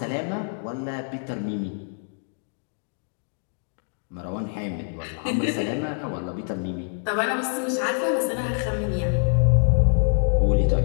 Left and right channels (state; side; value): silent; right; digital silence